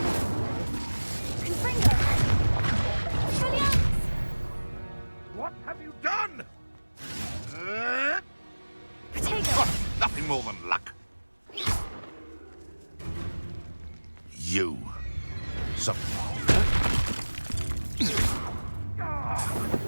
Confringo! Expelliarmus! What have you done? Protego! Nothing more than luck. You. Some...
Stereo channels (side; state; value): both; inverted; correlation -1.00